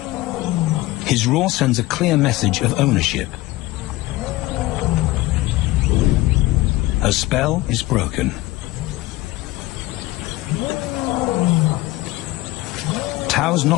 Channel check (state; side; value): quieter; right; 18.5 dB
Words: His roar sends a clear message of ownership. Her spell is broken. Tao's